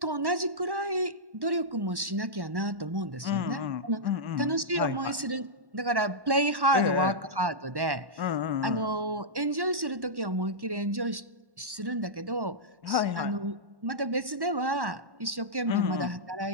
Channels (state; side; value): late; left; 1.1 ms